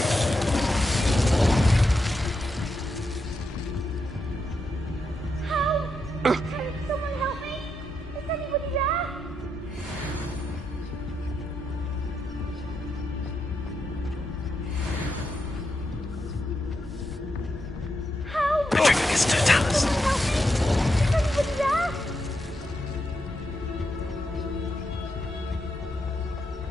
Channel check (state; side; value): normal; both; correlation 0.84